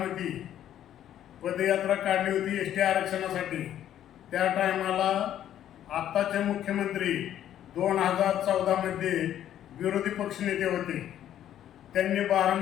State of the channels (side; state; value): right; quieter; 11.2 dB